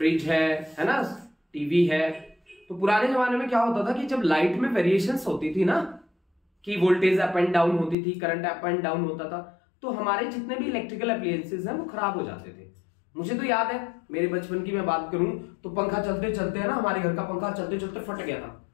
है ना, टीवी है। तो पुराने जमाने में क्या होता था कि जब लाइट में वेरिएशंस होती थी ना, कि वोल्टेज अप एंड डाउन होती थी, करंट अप एंड डाउन होता था, तो हमारे जितने भी इलेक्ट्रिकल अप्लायंसेस हैं वो खराब हो जाते थे। मुझे तो याद है, मेरे बचपन की मैं बात करूं तो पंखा चलते चलते है ना, हमारे घर का पंखा चलते चलते फट गया था,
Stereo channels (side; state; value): right; drops out; at 8.0 s